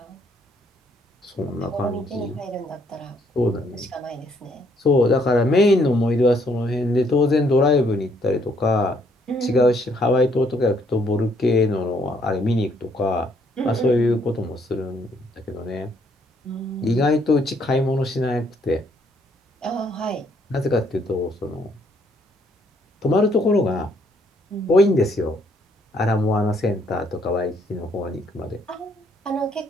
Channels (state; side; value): normal; both; correlation 0.68